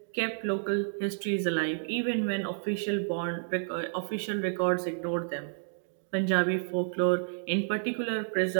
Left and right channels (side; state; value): left; silent; digital silence